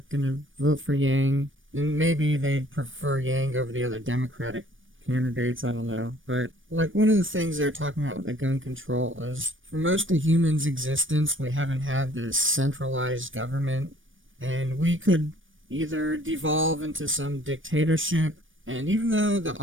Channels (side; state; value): left; late; 0.57 ms